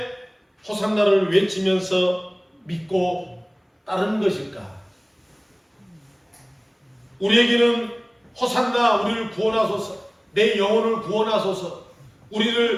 호산나를 외치면서 믿고 따르는 것일까? 우리에게는 호산나, 우리를 구원하소서, 내 영혼을 구원하소서,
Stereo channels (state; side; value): identical; both; correlation 1.00